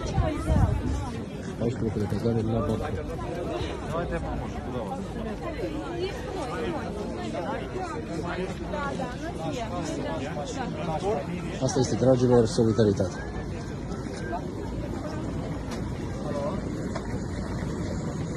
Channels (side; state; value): both; identical; correlation 1.00